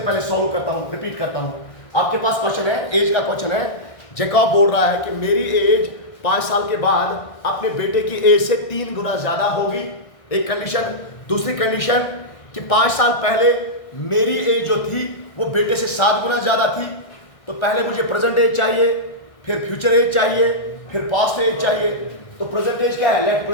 सॉल्व करता हूं, रिपीट करता हूं। आपके पास क्वेश्चन है, एज का क्वेश्चन है। जैकब बोल रहा है कि मेरी एज 5 साल के बाद अपने बेटे की एज से 3 गुना ज्यादा होगी, एक कंडीशन। दूसरी कंडीशन कि 5 साल पहले मेरी एज जो थी वो बेटे से 7 गुना ज्यादा थी। तो पहले मुझे प्रेजेंट एज चाहिए, फिर फ्यूचर एज चाहिए, फिर पास्ट एज चाहिए। तो प्रेजेंट एज क्या है? Let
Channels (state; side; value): late; right; 1.6 ms